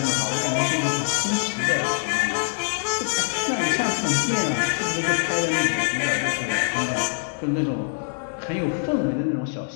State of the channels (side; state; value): right; silent; 63 dB below the other